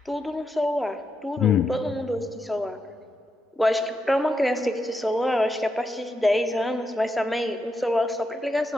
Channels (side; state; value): both; normal; correlation 0.84